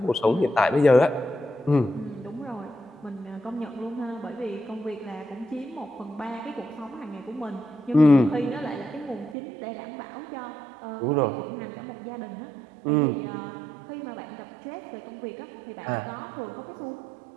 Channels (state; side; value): drops out; left; at 9.3 s